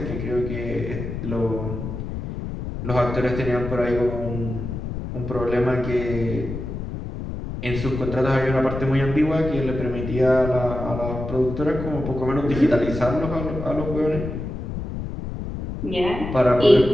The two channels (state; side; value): noise; left; rumble, 6 dB below the sound